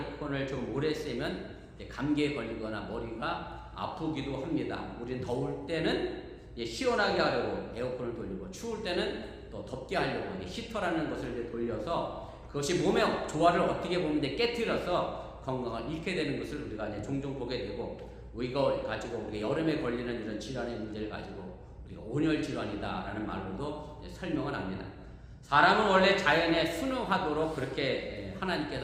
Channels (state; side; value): identical; both; correlation 1.00